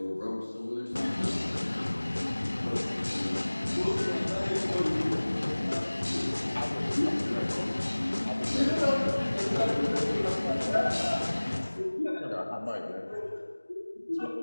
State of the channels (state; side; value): inverted; both; correlation -1.00